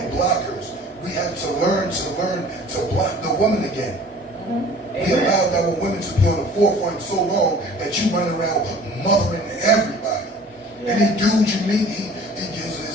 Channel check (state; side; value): normal; both; correlation 0.48